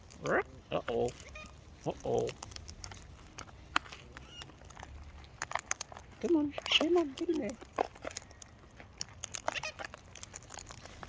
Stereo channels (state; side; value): identical; both; correlation 1.00